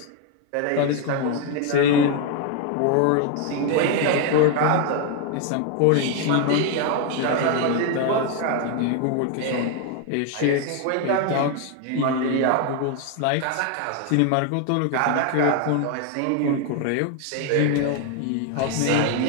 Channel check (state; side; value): different; both; correlation 0.01